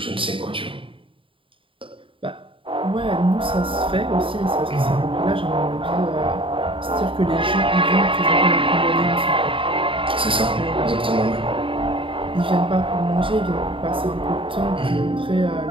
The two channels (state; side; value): late; left; 0.25 ms